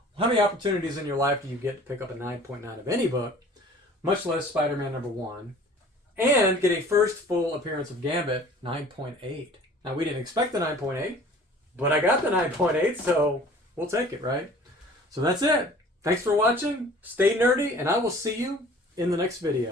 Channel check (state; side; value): normal; both; correlation 0.48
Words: how many opportunities in your life do you get to pick up a 9.9 of any book, much less Spider-Man #1, and get a first full appearance of Gambit, 9.8. Now, we didn't expect the 9.8, but I got the 9.8, so we'll take it, right? So that's it. Thanks for watching. Stay nerdy, and I will see you in the next